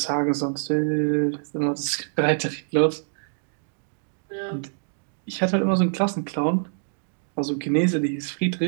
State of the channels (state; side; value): silent; left; digital silence